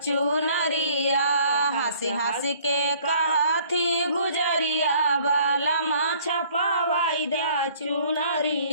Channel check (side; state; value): both; inverted; correlation -0.57